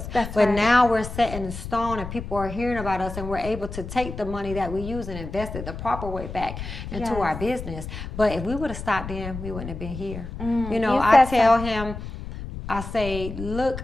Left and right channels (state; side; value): noise; left; rumble, 9 dB below the sound